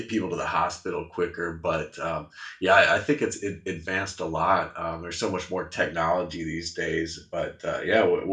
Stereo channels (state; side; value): identical; both; correlation 1.00